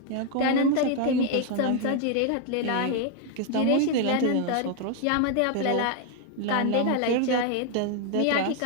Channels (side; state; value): both; different; correlation 0.01